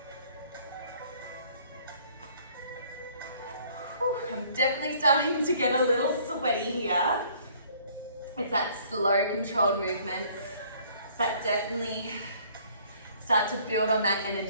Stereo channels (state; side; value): inverted; both; correlation -0.58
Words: Whew, I'm definitely starting to get a little sweaty here. It's that slow, controlled movement that definitely start to build on that